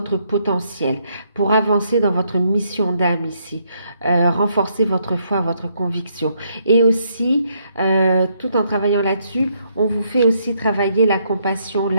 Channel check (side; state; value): both; inverted; correlation -0.74